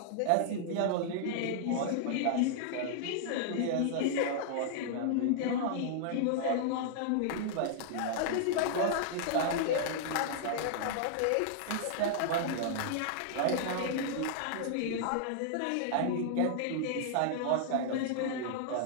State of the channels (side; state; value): both; different; correlation -0.01